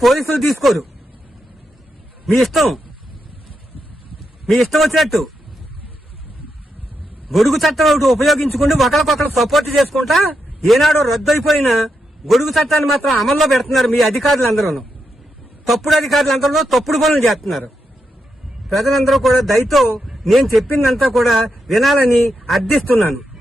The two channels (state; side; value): normal; both; correlation 0.84